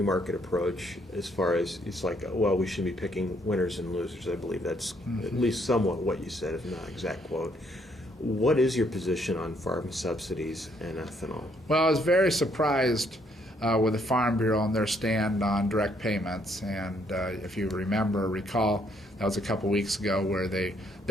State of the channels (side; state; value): both; normal; correlation 0.69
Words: market approach as far as it's like, well, we should be picking winners and losers. I believe that's at least somewhat what you said, if not exact quote. What is your position on farm subsidies and ethanol? Well, I was very surprised with the Farm Bureau and their stand on direct payments. And if you recall, that was a couple weeks ago where